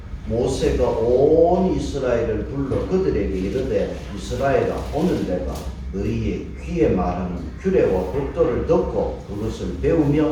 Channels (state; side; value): identical; both; correlation 1.00